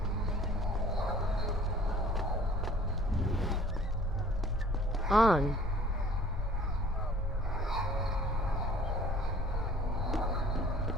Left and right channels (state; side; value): normal; both; correlation 0.52